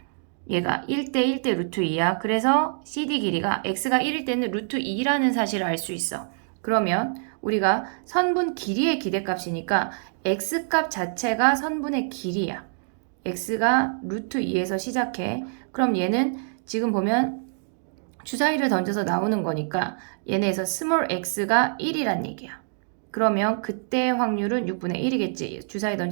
얘가 1대 1대 루트 2야. 그래서 CD 길이가 x가 1일 때는 루트 2라는 사실을 알 수 있어. 그러면 우리가 선분 길이의 기대값이니까 x값 자체가 선분의 길이야. x가 루트 2에서 시작해. 그럼 얘는 지금 보면 주사위를 던져서 나오는 거니까 얘네에서 스몰 x가 1이란 얘기야. 그러면 그때 확률은 6분의 1이겠지. 주사위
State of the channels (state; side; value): silent; left; digital silence